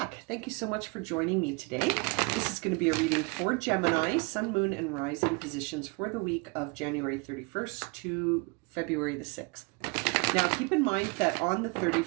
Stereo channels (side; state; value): left; quieter; 30.4 dB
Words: back. Thank you so much for joining me today. This is going to be a reading for Gemini, Sun, Moon, and Rising positions for the week of January 31st to February the 6th. Now, keep in mind that on the